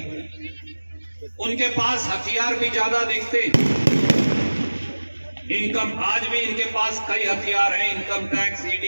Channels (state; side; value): inverted; both; correlation -1.00